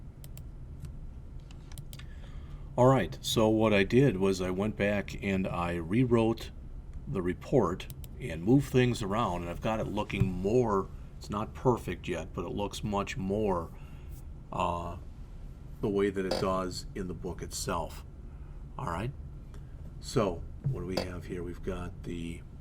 All right, so what I did was I went back and I rewrote the report and moved things around, and I've got it looking more, it's not perfect yet, but it looks much more the way that it does in the book itself. All right, so what do we have here? We've got the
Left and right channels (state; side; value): identical; both; correlation 1.00